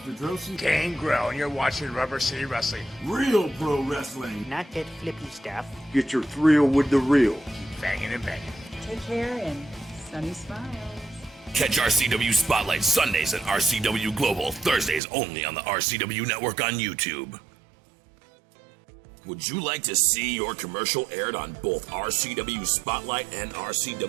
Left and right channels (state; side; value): drops out; left; at 15.0 s